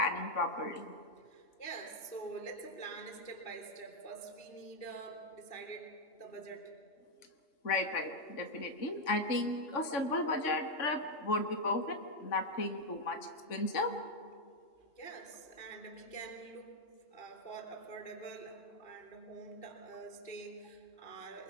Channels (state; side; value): late; right; 3.5 ms